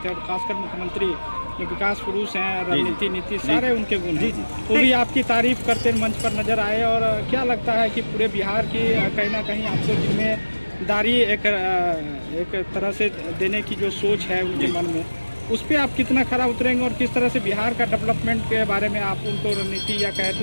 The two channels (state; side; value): inverted; both; correlation -1.00